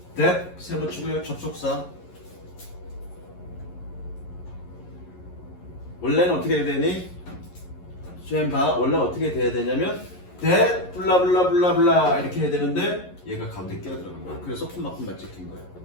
that, 세 붙이고요. 접속사. 원래는 어떻게 해야 되니? 원래 어떻게 돼야 되냐면 that 블라블라블라블라 이렇게 해야 되는데 얘가 가운데 끼어 들어간 거야. 그래서 콤마콤마 찍힌 거야.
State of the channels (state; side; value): late; right; 11 ms